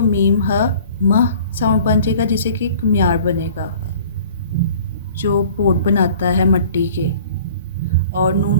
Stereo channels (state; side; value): inverted; both; correlation -0.49